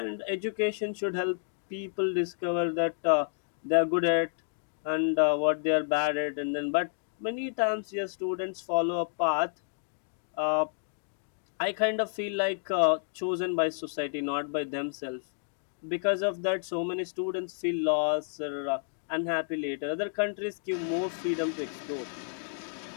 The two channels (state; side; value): silent; right; digital silence